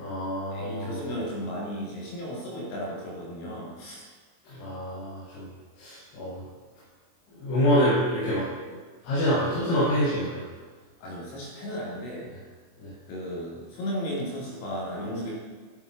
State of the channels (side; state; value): right; late; 24 ms